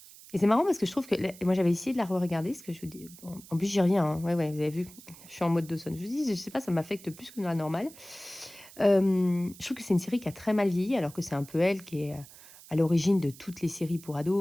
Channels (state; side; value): noise; right; hiss, 20 dB below the sound